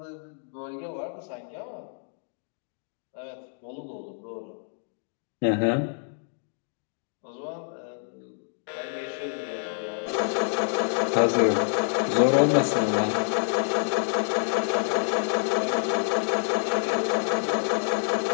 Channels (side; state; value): right; silent; digital silence